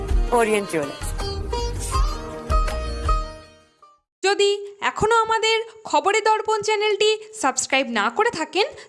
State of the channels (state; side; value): identical; both; correlation 1.00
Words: Orient Jewellers. যদি এখনও আমাদের খবরের দর্পণ চ্যানেলটি সাবস্ক্রাইব না করে থাকেন